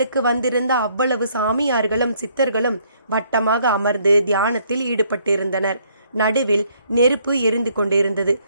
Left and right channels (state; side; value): inverted; both; correlation -0.67